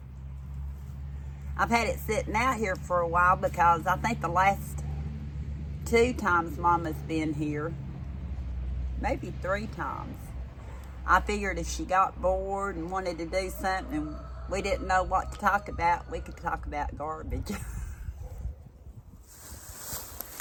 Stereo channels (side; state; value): both; identical; correlation 1.00